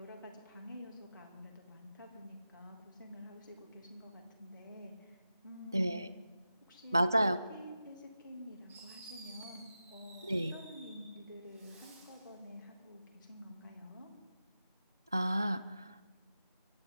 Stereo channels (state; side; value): inverted; both; correlation -0.91